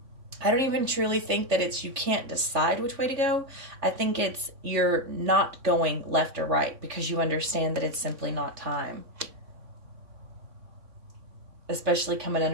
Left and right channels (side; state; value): left; late; 3.6 ms